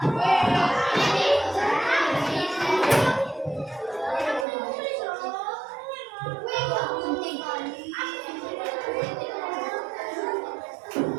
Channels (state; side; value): drops out; left; at 4.5 s